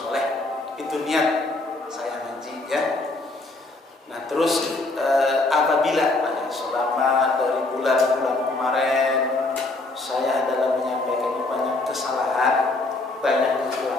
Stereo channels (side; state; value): right; quieter; 3.1 dB